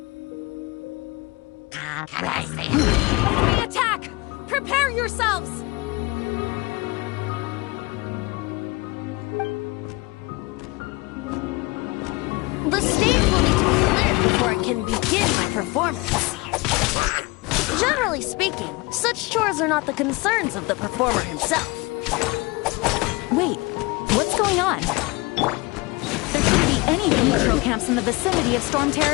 Enemy attack! Prepare yourselves! The stage will need to be cleared before I can begin my performance. Generally speaking, such chores are not the concerns of the performer himself. Wait, what's going on? There shouldn't be any neutral camps in the vicinity of Storm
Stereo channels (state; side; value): quieter; right; 24.3 dB